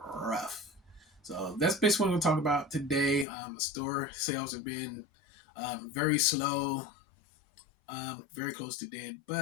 rough. So that's basically what we're going to talk about today. The store sales have been very slow, very close to dead.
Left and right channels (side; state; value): right; drops out; at 3.2 s